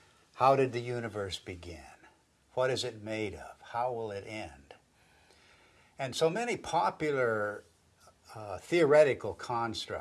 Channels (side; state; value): both; identical; correlation 1.00